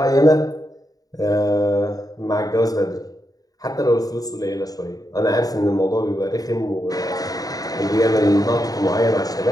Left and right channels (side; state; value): right; late; 0.18 ms